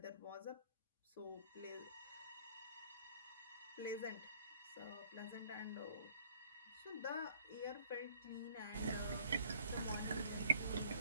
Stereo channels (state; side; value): inverted; both; correlation -0.59